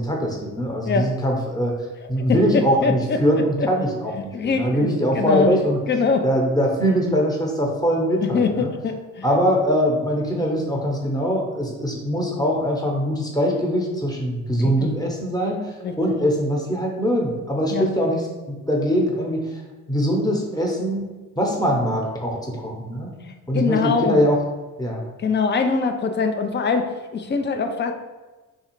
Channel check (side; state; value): both; normal; correlation 0.46